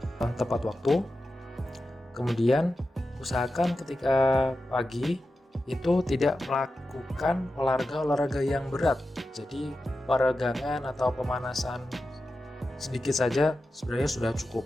tepat waktu. Kemudian usahakan ketika pagi itu tidak melakukan olahraga yang berat. Jadi peregangan atau pemanasan sedikit saja sebenarnya sudah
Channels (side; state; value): both; normal; correlation 0.92